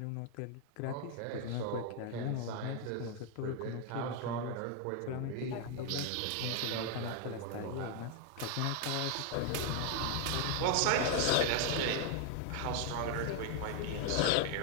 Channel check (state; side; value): different; both; correlation 0.00